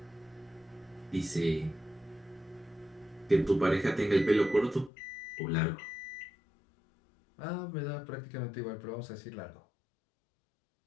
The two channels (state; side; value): drops out; right; at 4.9 s